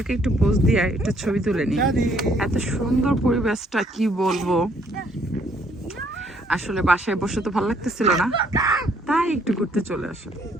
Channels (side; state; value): both; normal; correlation 0.66